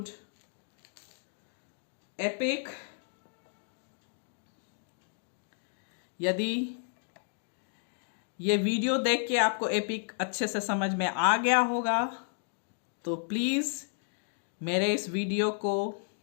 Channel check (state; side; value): silent; right; digital silence